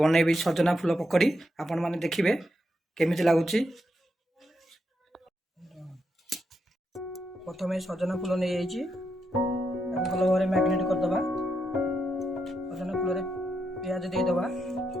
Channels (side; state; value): both; normal; correlation 0.82